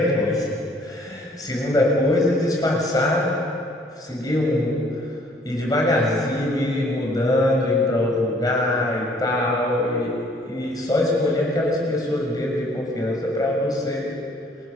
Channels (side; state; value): both; normal; correlation 0.60